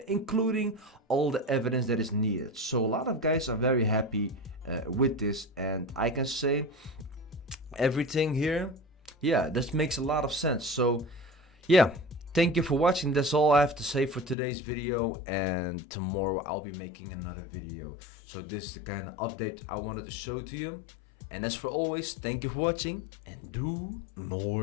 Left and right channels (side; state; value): right; drops out; at 14.4 s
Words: including all the evidence that is needed. So a lot of guys are very happy with this, and I can say everything here, yeah, this makes a lot of sense. So yeah, thank you for watching. That's all I have to say for today's video, and tomorrow I'll be making another video. So this is the kind of update I wanted to show to you. And as for always, thank you for watching, and doe